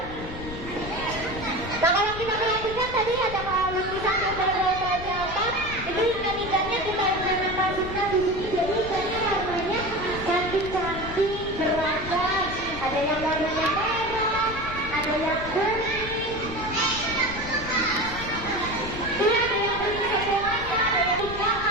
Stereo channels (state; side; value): noise; left; rumble, 10 dB below the sound